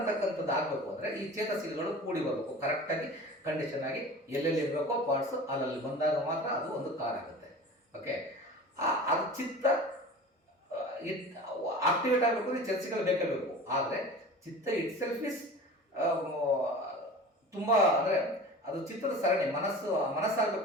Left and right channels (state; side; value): normal; both; correlation 0.37